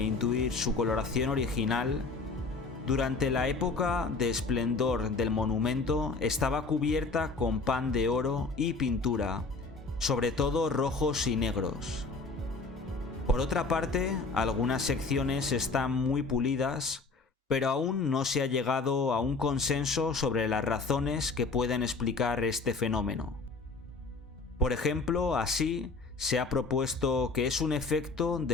intuir su coloración original, durante la época de esplendor del monumento estaba cubierta con pan de oro y pintura, sobre todo rojos y negros. Por otra parte, algunas secciones están muy pulidas, pero aún no se ha llegado a un consenso sobre las razones que pueden explicar este fenómeno. Por ejemplo, así se ha propuesto que es un efecto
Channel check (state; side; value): quieter; right; 4.0 dB